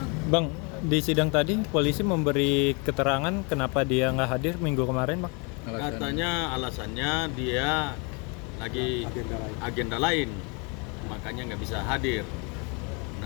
Bang, di sidang tadi polisi memberi keterangan kenapa dia nggak hadir minggu kemarin Bang? Katanya alasannya dia lagi agenda lain, makanya nggak bisa hadir.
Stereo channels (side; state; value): right; quieter; 32.4 dB